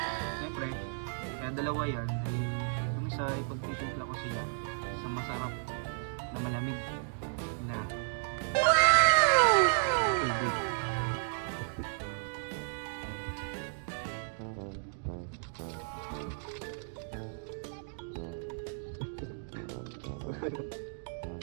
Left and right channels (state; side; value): silent; left; digital silence